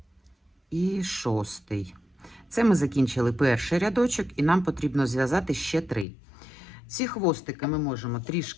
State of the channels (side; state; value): right; drops out; at 6.1 s